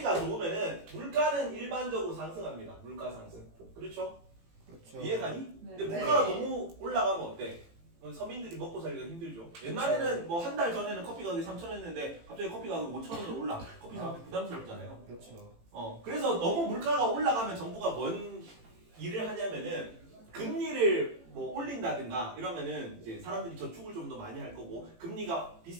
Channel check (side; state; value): left; late; 18 ms